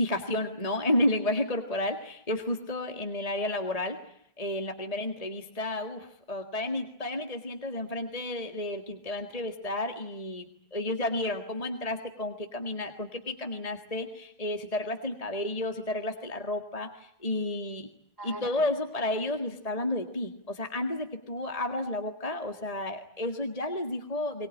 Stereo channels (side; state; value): right; late; 1.7 ms